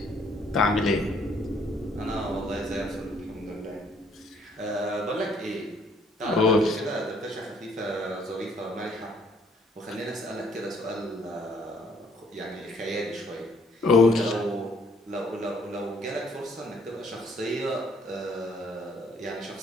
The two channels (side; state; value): both; normal; correlation 0.64